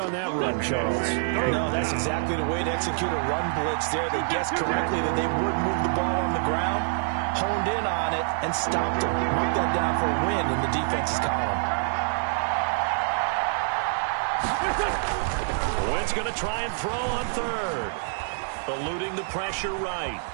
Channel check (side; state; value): left; silent; 61 dB below the other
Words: that run, Charles. No, that's exactly the way to execute a run blitz there. They guessed correctly that they would move the ball on the ground, honed in on it, and stopped him. Mark that down for a win in the defense's column. Wentz going to try and throw on 3rd. Eluding the pressure right.